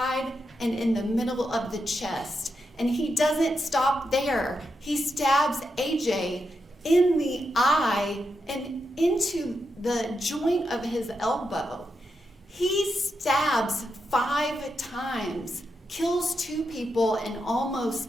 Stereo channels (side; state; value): both; normal; correlation 0.85